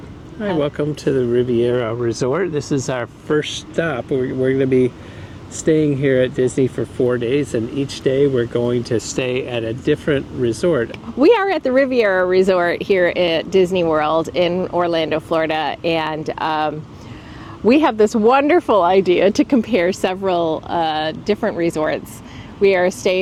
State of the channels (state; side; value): identical; both; correlation 1.00